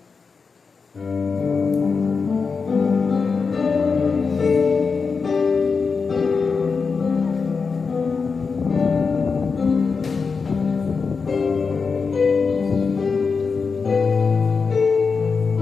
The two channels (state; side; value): quieter; right; 5.0 dB